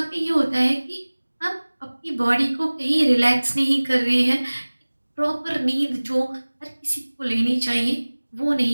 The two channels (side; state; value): both; inverted; correlation -1.00